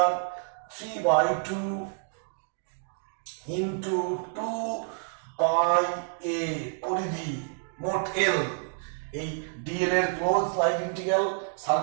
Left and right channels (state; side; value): silent; left; 59 dB below the other